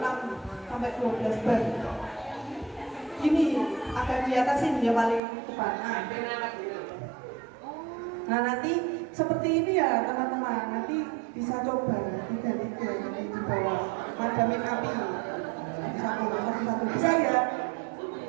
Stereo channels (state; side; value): drops out; left; at 5.2 s